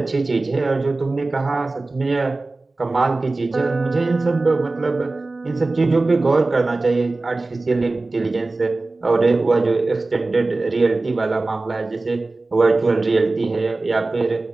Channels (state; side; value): quieter; left; 3.3 dB